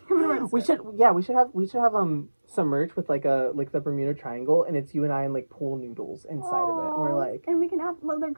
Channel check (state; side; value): inverted; both; correlation -1.00